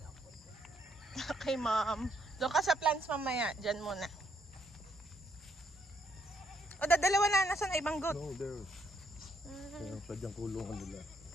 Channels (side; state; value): both; normal; correlation 0.73